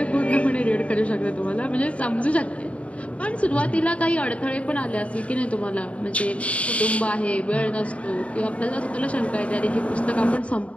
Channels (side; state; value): right; late; 0.064 ms